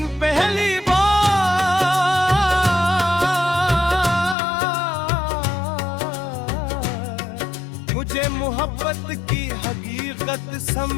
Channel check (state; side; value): drops out; right; at 4.4 s